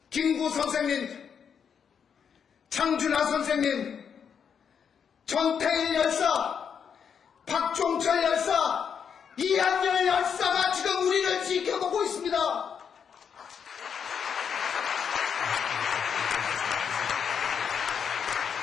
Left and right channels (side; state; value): right; quieter; 7.2 dB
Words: 김구 선생님, 장준하 선생님, 전태일 열사, 박종철 열사, 이한열 열사가 지금 우리를 지켜보고 있습니다.